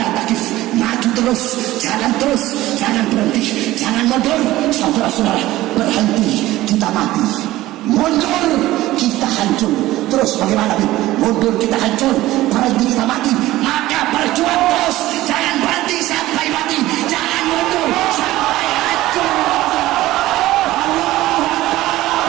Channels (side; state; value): left; quieter; 16.5 dB